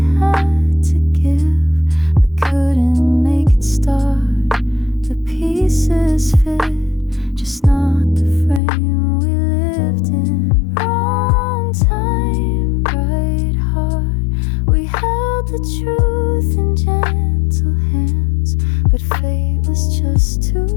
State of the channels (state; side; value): drops out; right; at 8.6 s